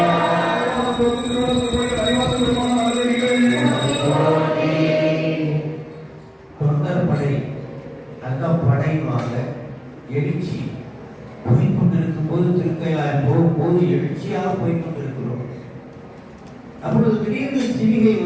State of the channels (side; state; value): both; identical; correlation 1.00